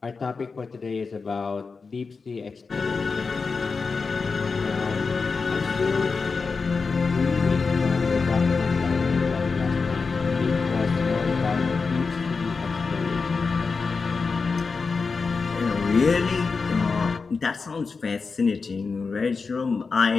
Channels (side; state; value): right; quieter; 4.7 dB